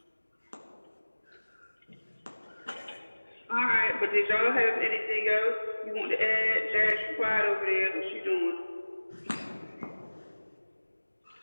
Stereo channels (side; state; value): both; inverted; correlation -1.00